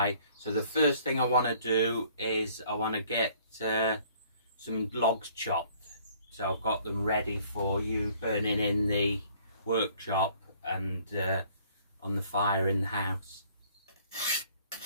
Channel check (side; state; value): both; inverted; correlation -0.58